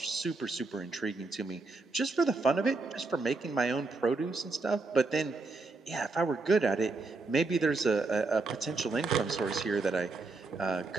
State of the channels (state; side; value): quieter; left; 3.6 dB